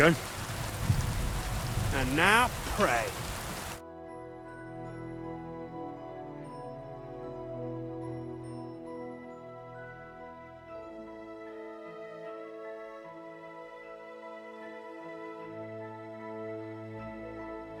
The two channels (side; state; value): both; identical; correlation 1.00